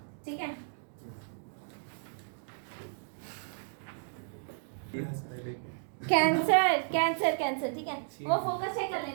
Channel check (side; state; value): left; silent; digital silence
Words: ठीक है। कैंसर कैंसर कैंसर, ठीक है, वो फोकस चेक कर